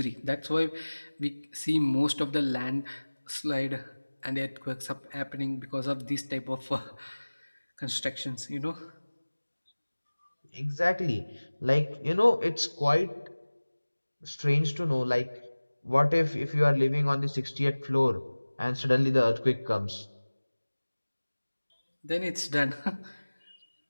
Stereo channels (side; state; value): both; inverted; correlation -1.00